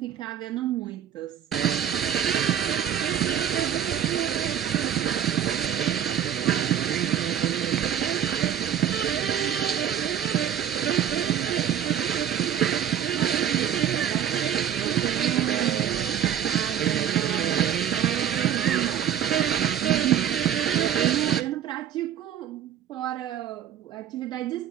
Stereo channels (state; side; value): quieter; left; 9.6 dB